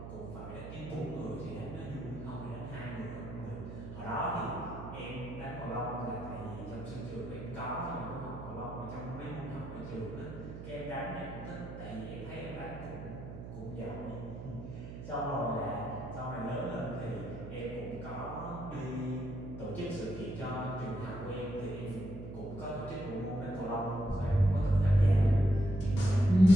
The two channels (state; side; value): noise; right; hum, 10 dB below the sound